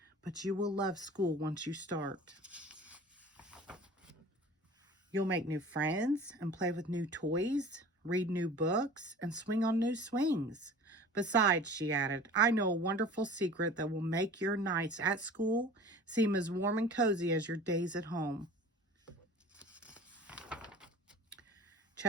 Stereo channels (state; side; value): normal; both; correlation 0.42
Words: But you will love school once you start. You'll make new friends and play with new toys, read new books, and swing on new swings. Besides, she added, I know a wonderful secret that will make your nights at school seem as warm and cozy as your days at home.